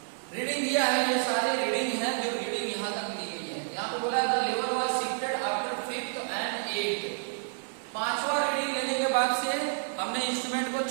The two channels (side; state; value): left; silent; 57 dB below the other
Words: रीडिंग दिया है, ये सारे रीडिंग है जो रीडिंग यहाँ तक ली गई है। यहाँ पे बोला the level was shifted after 5th and 8th। 5वां रीडिंग लेने के बाद से हमने इंस्ट्रूमेंट को